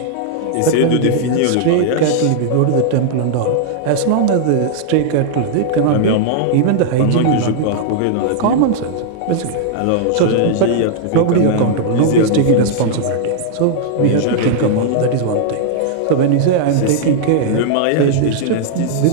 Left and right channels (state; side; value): different; both; correlation -0.01